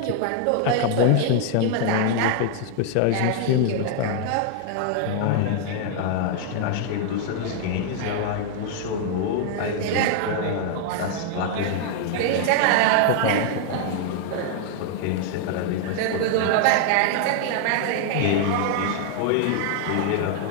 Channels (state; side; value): different; both; correlation 0.00